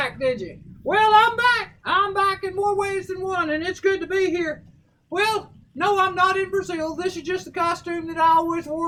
did you? Well, I'm back. I'm back in more ways than one, and it's good to be here. Well, no, I'm not in Brazil. This is just the costume that I always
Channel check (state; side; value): identical; both; correlation 1.00